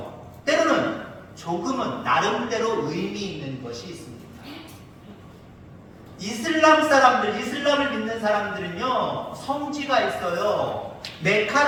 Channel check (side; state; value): both; identical; correlation 1.00